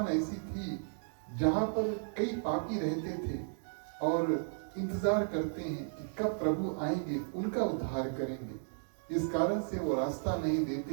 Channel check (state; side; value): silent; left; digital silence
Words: ऐसी थी जहां पर कई पापी रहते थे और इंतजार करते हैं कि कब प्रभु आएंगे, उनका उद्धार करेंगे। इस कारण से वो रास्ता नहीं